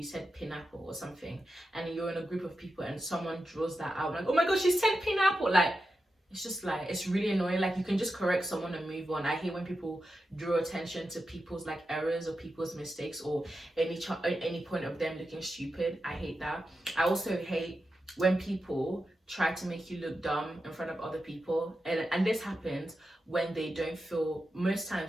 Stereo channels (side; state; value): both; normal; correlation 0.89